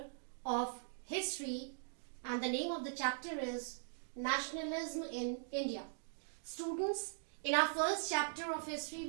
of history, and the name of the chapter is Nationalism in India. Students, in our first chapter of history,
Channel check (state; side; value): silent; left; digital silence